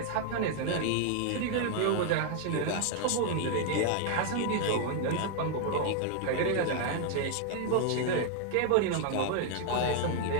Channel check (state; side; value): different; both; correlation 0.00